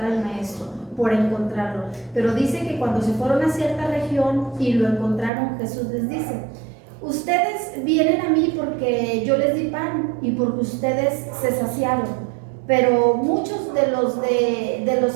al maestro, por encontrarlo. Pero dice que cuando se fueron a cierta región y lo encontraron, Jesús les dice: ustedes vienen a mí porque yo les di pan y porque ustedes se saciaron. Pero muchos de los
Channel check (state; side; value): drops out; left; at 5.3 s